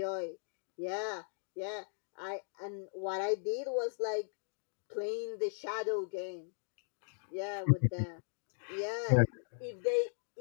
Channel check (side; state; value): right; silent; digital silence